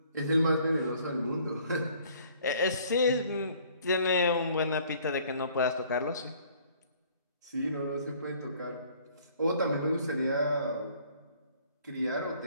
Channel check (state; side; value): inverted; both; correlation -0.58